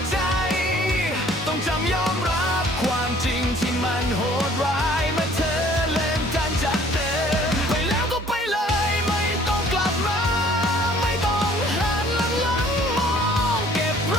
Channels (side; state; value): both; normal; correlation 0.56